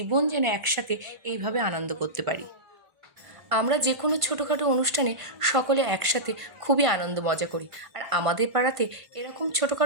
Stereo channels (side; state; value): left; late; 1.5 ms